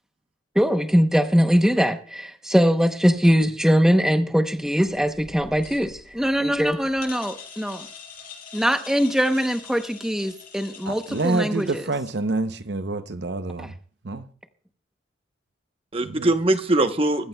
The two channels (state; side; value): normal; both; correlation 0.89